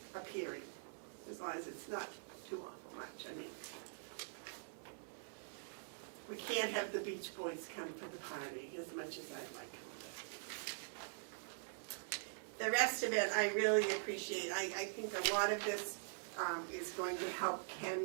appearing, as long as it's not too awful much. I mean, we can't have the Beach Boys come for the party as much as I'd like them to. The rest of it, I really appreciate. I think a lot of this is going to help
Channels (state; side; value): silent; left; digital silence